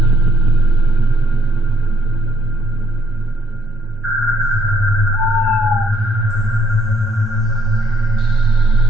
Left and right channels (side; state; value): both; normal; correlation 0.68